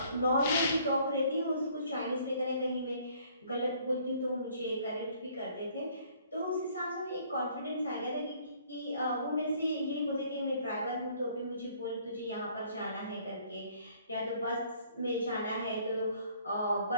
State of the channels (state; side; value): inverted; both; correlation -0.60